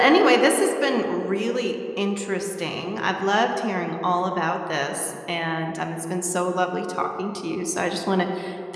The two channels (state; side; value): identical; both; correlation 1.00